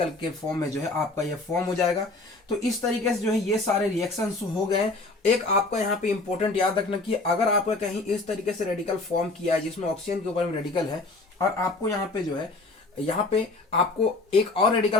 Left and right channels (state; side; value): quieter; right; 3.2 dB